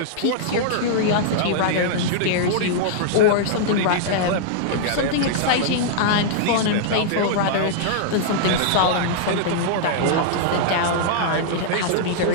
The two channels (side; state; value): both; different; correlation -0.01